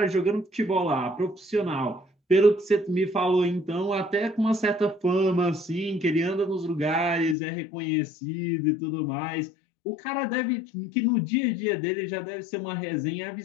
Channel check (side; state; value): right; drops out; at 7.4 s